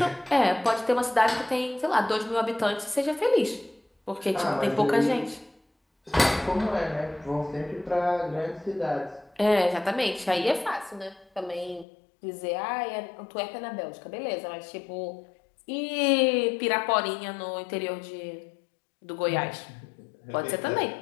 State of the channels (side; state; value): right; drops out; at 11.9 s